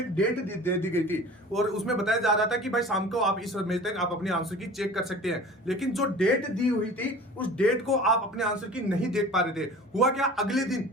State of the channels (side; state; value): both; normal; correlation 0.41